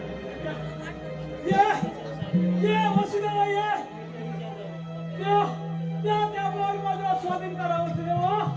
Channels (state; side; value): identical; both; correlation 1.00